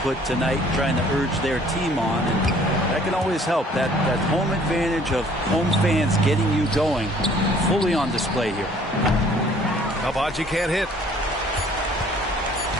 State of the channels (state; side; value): normal; both; correlation 0.57